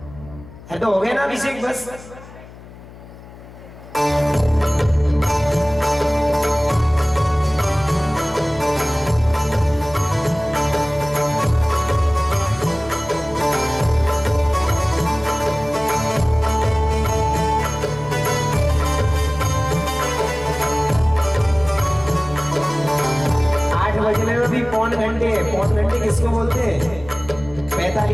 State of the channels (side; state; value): left; noise; hum, 19 dB below the sound